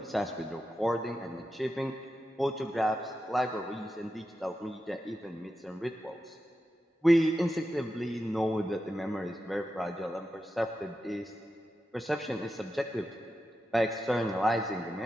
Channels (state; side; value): normal; both; correlation 0.89